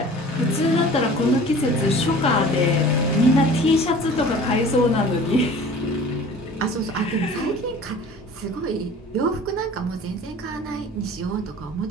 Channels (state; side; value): normal; both; correlation 0.44